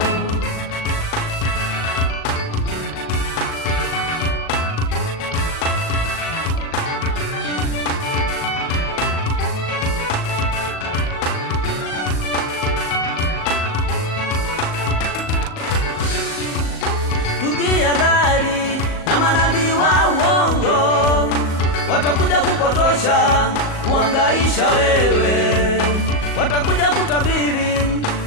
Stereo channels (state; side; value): late; right; 38 ms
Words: Tujihadhari na manabii wa uongo, watakuja kupotosha, kuhangaisha wewe. Watakuja kutabiri